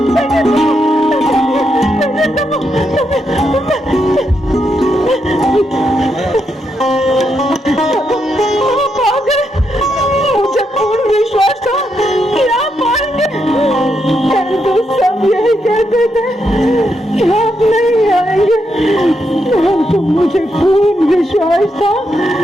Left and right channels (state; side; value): normal; both; correlation 0.81